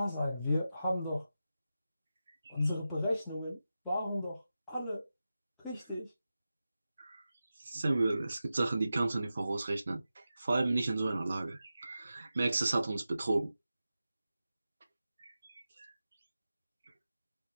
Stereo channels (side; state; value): both; inverted; correlation -0.92